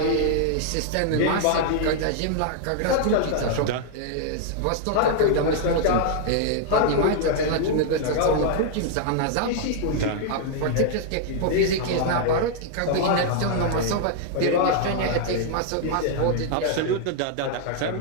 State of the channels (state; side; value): different; both; correlation -0.01